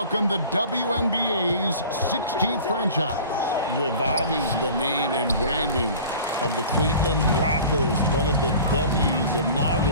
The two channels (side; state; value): both; inverted; correlation -0.42